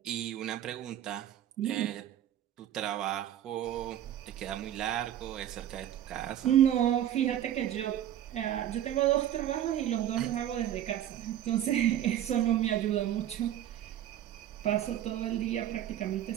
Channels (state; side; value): quieter; left; 11.4 dB